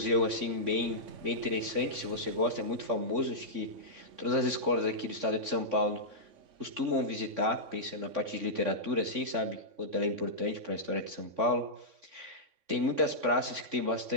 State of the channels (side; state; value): left; late; 3.6 ms